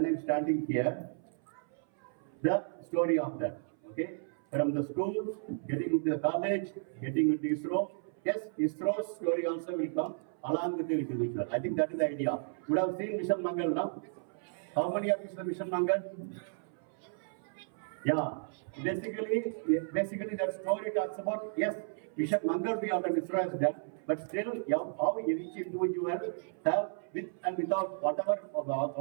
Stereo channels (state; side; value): silent; left; 55 dB below the other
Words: I'm standing here. The story of that. Okay, from the school, getting into the college, getting into ISRO. Yes, ISRO's story also will come along with the individual. I think that is the idea. You would have seen Mission Mangal now. How many of you saw Mission Mangal? Yeah. Basically that story talks about, yes, Mission Mangal we have done, ISRO has done, but still how each individual have with and without whatever